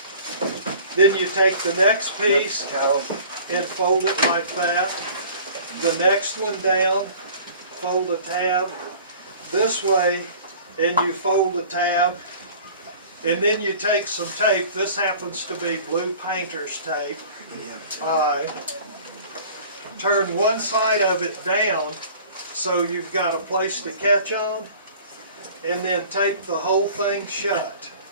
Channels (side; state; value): both; inverted; correlation -0.46